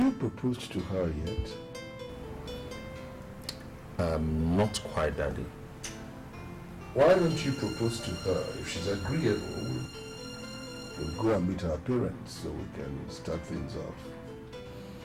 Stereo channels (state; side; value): identical; both; correlation 1.00